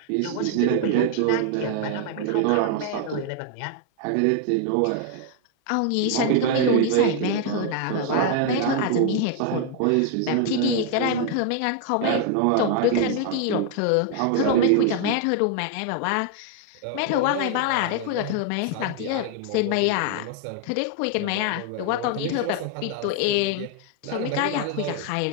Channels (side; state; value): both; different; correlation 0.00